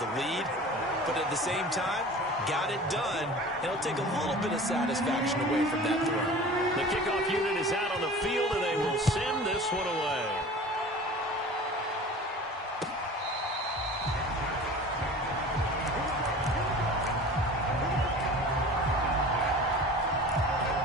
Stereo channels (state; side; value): normal; both; correlation 0.40